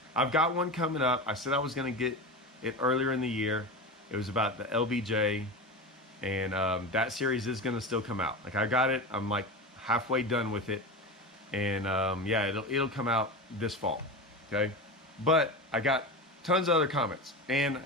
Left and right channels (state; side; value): normal; both; correlation 0.24